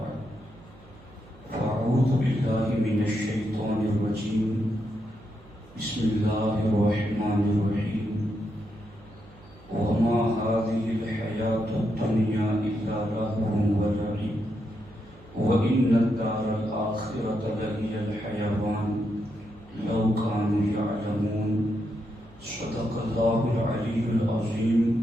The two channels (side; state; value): right; noise; hum, 24 dB below the sound